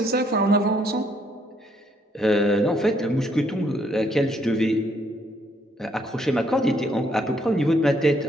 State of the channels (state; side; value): normal; both; correlation 0.69